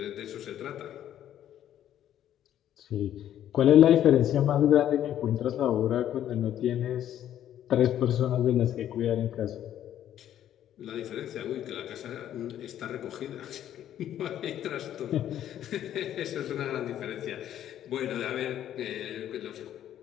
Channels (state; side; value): quieter; right; 11.2 dB